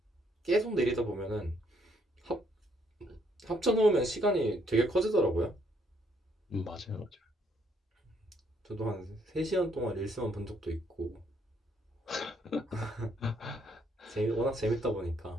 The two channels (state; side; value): normal; both; correlation 0.70